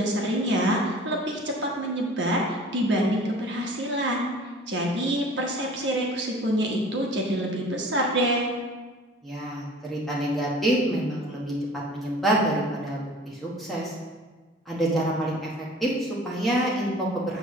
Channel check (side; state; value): both; normal; correlation 0.45